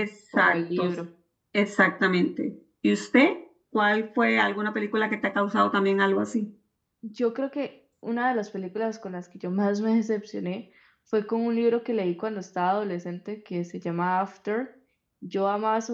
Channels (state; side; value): identical; both; correlation 1.00